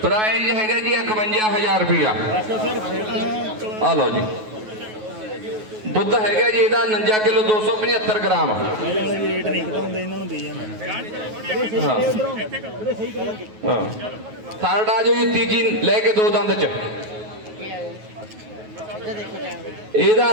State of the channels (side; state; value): left; late; 9.3 ms